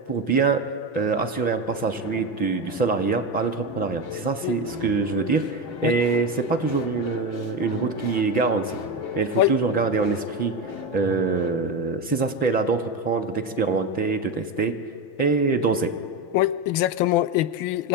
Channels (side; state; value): right; late; 6.0 ms